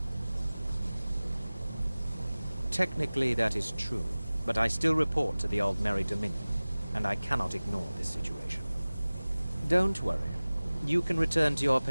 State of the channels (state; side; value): inverted; both; correlation -0.98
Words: Technically, that is true, but I still report to the Aldmeri Dominion, and I cannot ignore this situation. Don't worry. You can return to your